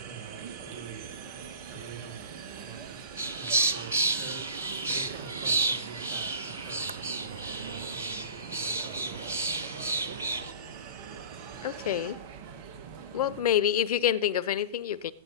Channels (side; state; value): both; inverted; correlation -0.34